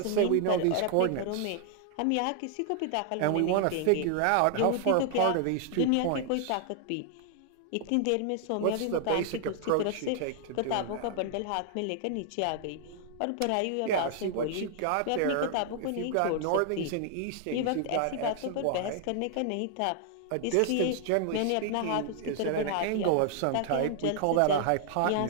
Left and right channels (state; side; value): different; both; correlation 0.00